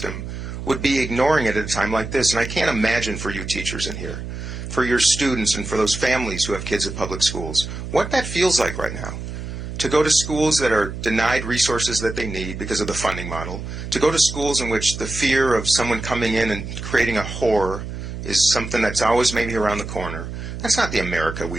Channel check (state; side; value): noise; right; hum, 8 dB below the sound